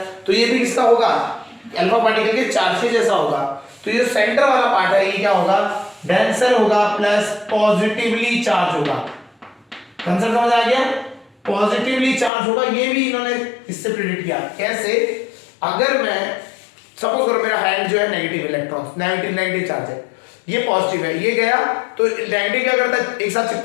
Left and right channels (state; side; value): drops out; right; at 12.3 s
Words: तो ये भी किसका होगा, अल्फा पार्टिकल के चार्ज के जैसा होगा। तो ये सेंटर वाला पार्ट है, ये क्या होगा, डेंसर होगा प्लस पॉजिटिवली चार्ज होगा। कंसेप्ट समझ आ गया, पॉजिटिवली चार्ज होगा। ये भी इन्होंने इससे प्रेडिक्ट किया। कैसे, अगर मैं सपोज करो मेरा हैंड जो है नेगेटिव इलेक्ट्रॉन, नेगेटिव चार्ज है, ये पॉजिटिव है, ये गया तो नेगेटिव क्या करता है, एक साथ